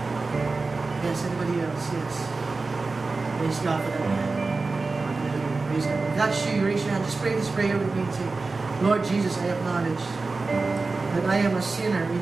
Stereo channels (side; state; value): left; quieter; 3.8 dB